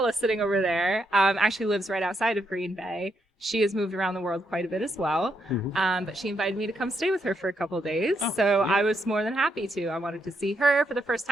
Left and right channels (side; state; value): both; normal; correlation 0.79